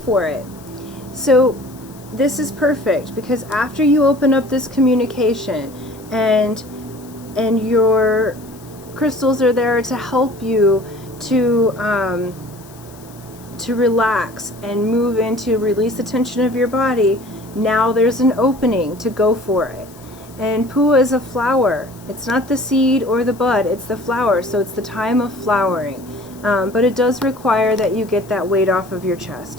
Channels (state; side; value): noise; left; hiss, 24 dB below the sound